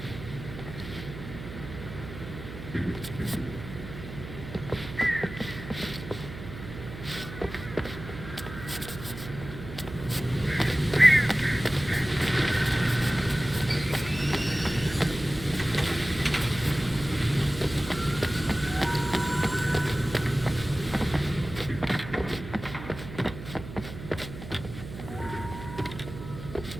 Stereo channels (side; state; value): right; noise; hum, 11 dB below the sound